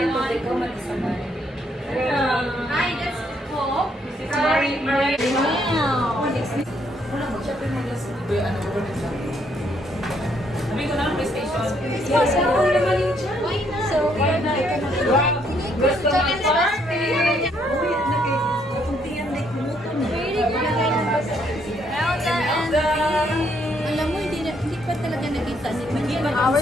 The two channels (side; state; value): both; normal; correlation 0.71